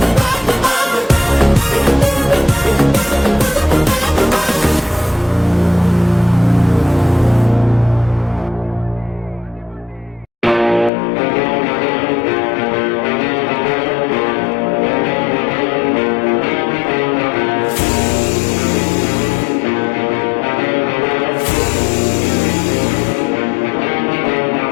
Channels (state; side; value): drops out; right; at 10.9 s